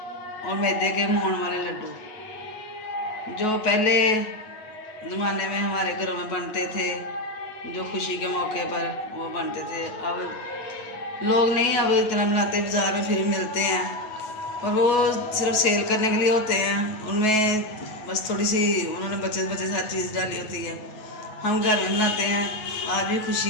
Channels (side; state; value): right; late; 9.3 ms